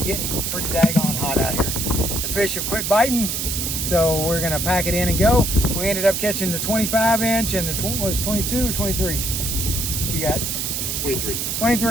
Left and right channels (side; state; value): right; noise; hiss, 1 dB below the sound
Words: getting pretty daggone hot out here. The fish have quit biting, so we're gonna pack it in and go. We ended up catching the 25-inch and the was 22 or 23. What you got? 23.